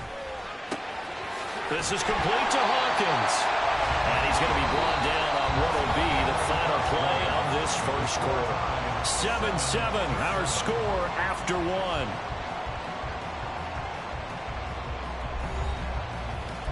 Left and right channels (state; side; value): identical; both; correlation 1.00